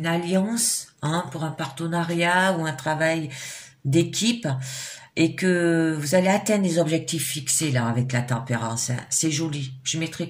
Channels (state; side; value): identical; both; correlation 1.00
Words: alliance, hein, pour un partenariat ou un travail d'équipe, et que vous allez atteindre les objectifs fixés là avec la tempérance. Hein. C'est joli. Je mettrai